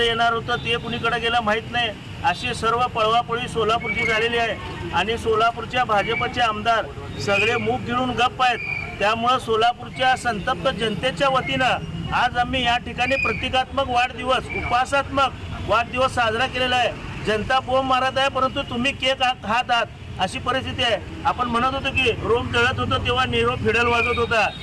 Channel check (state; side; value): identical; both; correlation 1.00